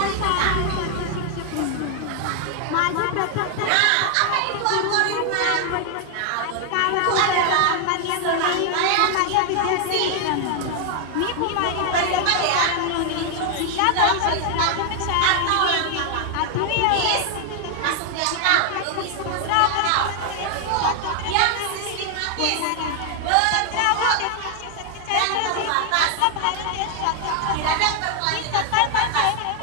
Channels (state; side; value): different; both; correlation 0.00